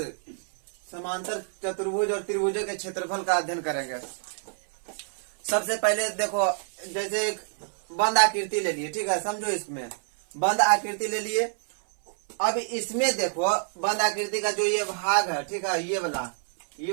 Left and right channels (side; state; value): left; silent; digital silence